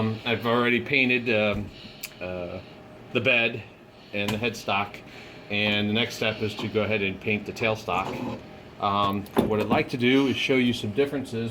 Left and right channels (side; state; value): both; identical; correlation 1.00